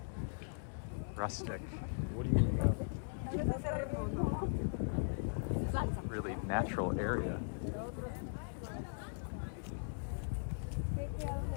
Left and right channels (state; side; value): silent; right; digital silence